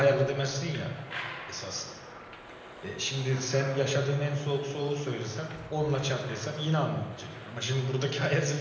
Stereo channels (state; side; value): identical; both; correlation 1.00